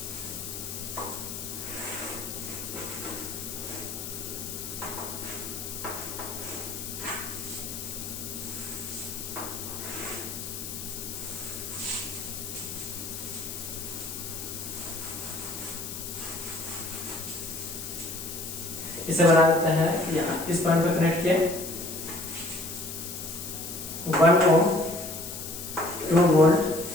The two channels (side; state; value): left; noise; hiss, 7 dB below the sound